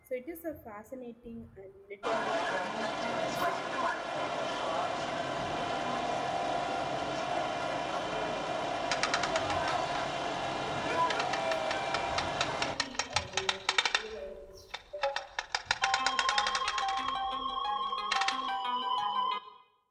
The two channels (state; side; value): identical; both; correlation 1.00